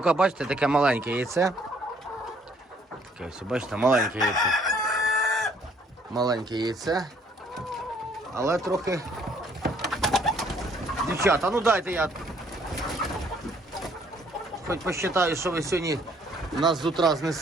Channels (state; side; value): normal; both; correlation 0.63